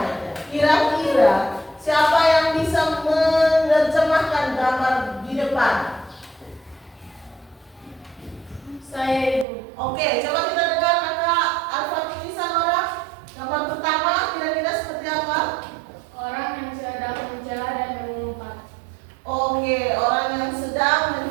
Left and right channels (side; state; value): left; drops out; at 9.5 s